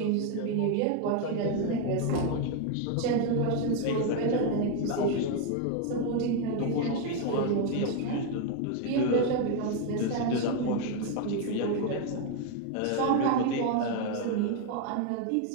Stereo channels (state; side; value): different; both; correlation 0.01